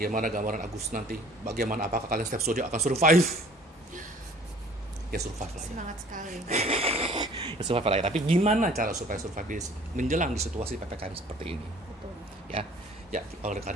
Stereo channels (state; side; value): normal; both; correlation 0.52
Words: gambaran Agustus nanti? Bagaimana apakah kalian setiap zodiak akan survive? Ya survive lah ya. Semangat sekali. Ya survive lah ya. Tapi gimana cara supaya survive menjelang di situasi PPKM seperti ini? Betul. Ya. Ya, oleh